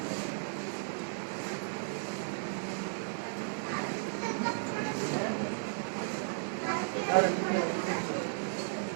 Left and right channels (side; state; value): left; silent; digital silence